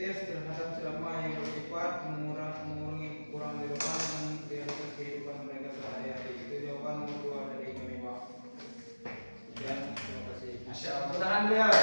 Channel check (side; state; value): both; inverted; correlation -1.00